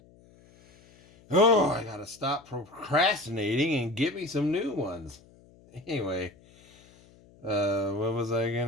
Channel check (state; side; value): noise; left; hum, 27 dB below the sound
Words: Oh, I gotta stop procrastinating and get me some new ones. Anyway, what was I